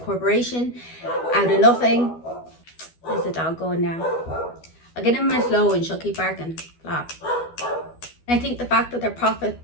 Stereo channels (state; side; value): late; right; 12 ms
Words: out of nothing. There's the dog going now. I'll get in my flow and she'll keep barking. Blah. And I think the fact that their profit